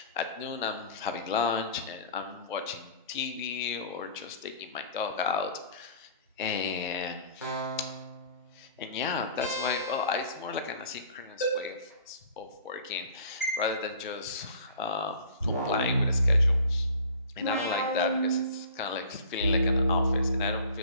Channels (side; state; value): both; inverted; correlation -0.46